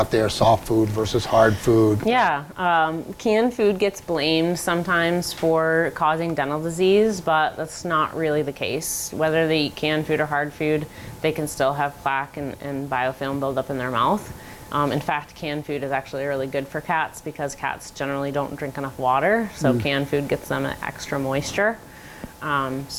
there, soft food versus hard food. Yeah, canned food gets blamed sometimes for causing dental disease, but that's not really the case. Whether they eat canned food or hard food, they can still have plaque and biofilm build up in their mouth. In fact, canned food is actually really good for cats because cats generally don't drink enough water, so canned food gets them extra moisture.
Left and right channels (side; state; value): both; identical; correlation 1.00